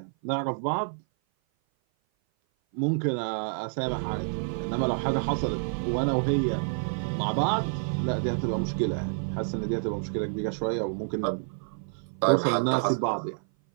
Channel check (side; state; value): left; silent; 56 dB below the other